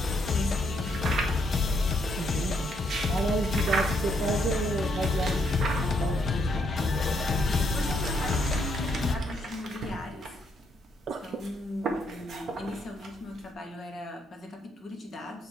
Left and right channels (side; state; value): both; normal; correlation 0.74